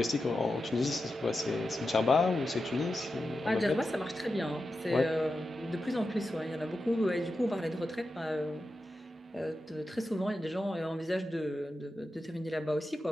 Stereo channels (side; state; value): both; normal; correlation 0.91